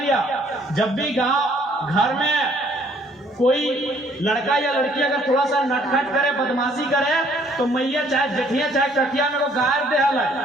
जब भी गांव घर में कोई लड़का या लड़की अगर थोड़ा सा नटखट करे, बदमाशी करे, तो मैया चाहे जेठिया चाहे कटिया में वो गायर दे हल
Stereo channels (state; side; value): normal; both; correlation 0.62